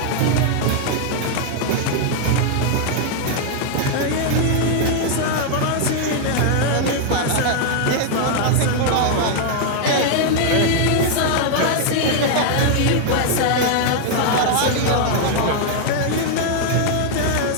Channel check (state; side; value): different; both; correlation 0.00